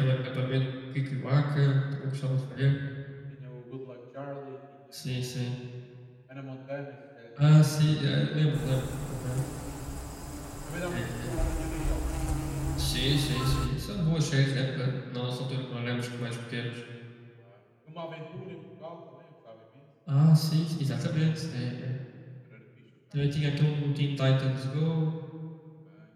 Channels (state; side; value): identical; both; correlation 1.00